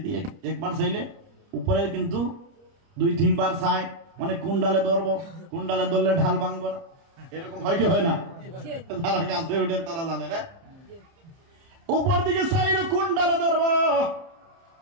একবার চাইলে উপরে, কিন্তু 2-3 বার চাই, মানে কোন ডালে ধরবো, কোন ডালে ধরলে ঢাল ভাঙবো না, এরকম হয় কি হয় না? যারা গাছে উঠে তারা জানে না। উপর দিকে চাইলো কোন ডালে ধরবো,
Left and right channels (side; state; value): left; late; 30 ms